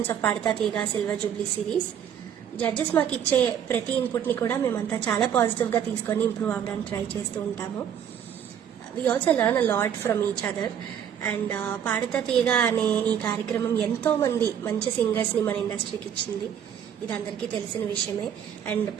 of Padutha Theeyaga silver Jubilee series. Judges మాకు ఇచ్చే ప్రతి ఇన్పుట్ ని కూడా మేమంతా చాలా పాజిటివ్ గా తీసుకొని ఇంప్రూవ్ అవ్వడానికి ట్రై చేస్తూ ఉంటాము. We also learn a lot from each other. And Padutha Theeyaga అనే ఈ కార్యక్రమం ఎంతో మంది మంచి సింగర్స్ ని మన ఇండస్ట్రీకి ఇచ్చింది. ఇది అందరికీ తెలిసిన విషయమే. And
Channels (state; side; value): quieter; left; 8.9 dB